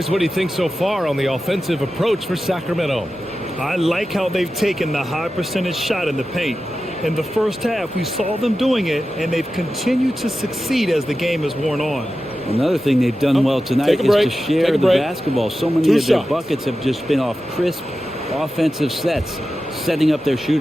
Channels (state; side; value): normal; both; correlation 0.93